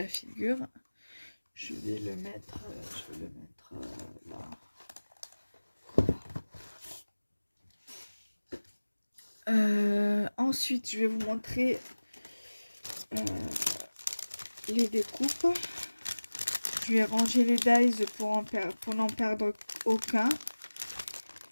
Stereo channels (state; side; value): inverted; both; correlation -1.00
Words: figure. Je vais le mettre là. Ensuite, je vais vous montrer les découpes. Je vais ranger les dies pour n'en perdre aucun.